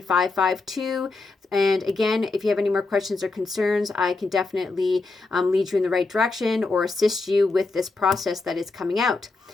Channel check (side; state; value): right; quieter; 3.6 dB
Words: And again, if you have any more questions or concerns, I can definitely lead you in the right direction or assist you with this process that is coming out.